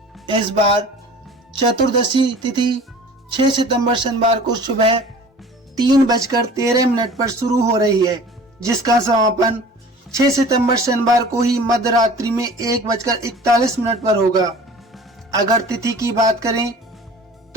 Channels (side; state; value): both; normal; correlation 0.44